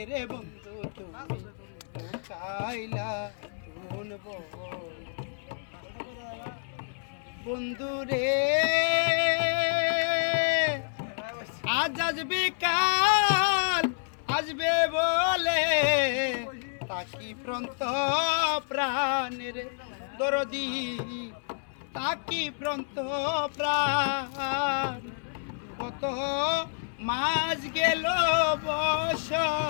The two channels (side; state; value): right; silent; 59 dB below the other